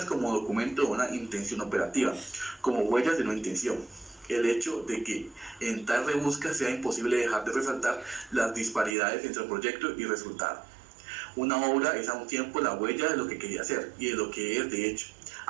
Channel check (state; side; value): drops out; left; at 9.0 s